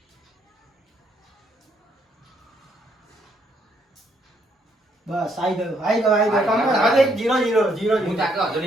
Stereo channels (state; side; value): normal; both; correlation 0.71